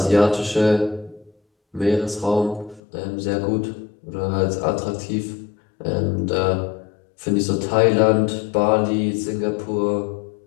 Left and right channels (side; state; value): right; drops out; at 2.8 s